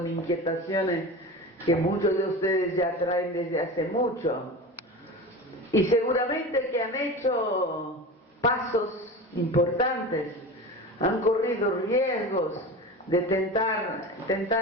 inquietaciones que muchos de ustedes ya traen desde hace mucho. Y seguramente que han hecho pasos importantes, han corrido riesgos de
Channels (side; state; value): both; normal; correlation 0.30